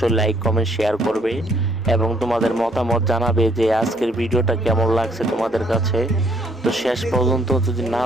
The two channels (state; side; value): normal; both; correlation 0.66